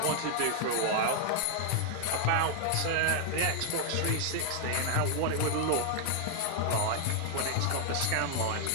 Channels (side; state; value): both; different; correlation 0.00